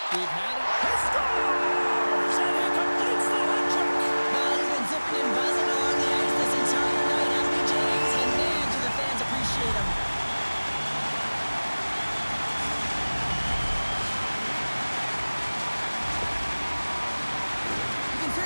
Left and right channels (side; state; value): both; inverted; correlation -1.00